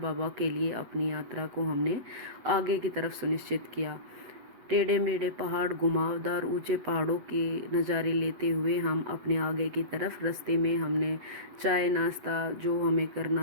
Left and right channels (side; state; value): left; late; 8.1 ms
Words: के लिए अपनी यात्रा को हमने आगे की तरफ सुनिश्चित किया। टेढ़े मेढ़े पहाड़, घुमावदार ऊंचे पहाड़ों के नज़ारे लेते हुए हम अपने आगे की तरफ रास्ते में हमने चाय नाश्ता जो हमें